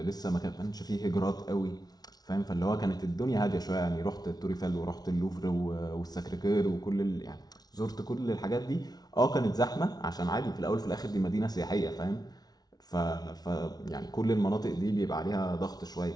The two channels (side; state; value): right; late; 0.19 ms